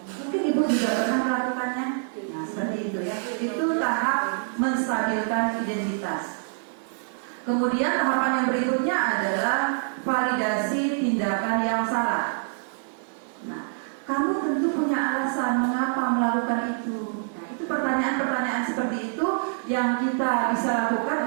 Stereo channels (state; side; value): silent; left; digital silence